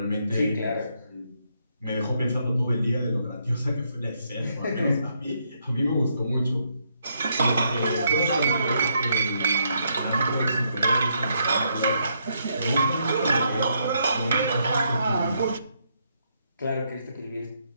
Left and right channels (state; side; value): inverted; both; correlation -0.75